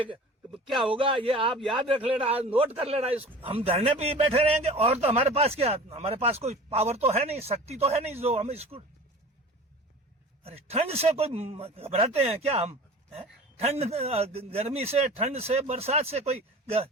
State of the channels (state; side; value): normal; both; correlation 0.40